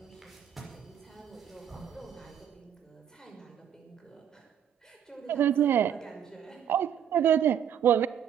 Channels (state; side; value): quieter; left; 9.3 dB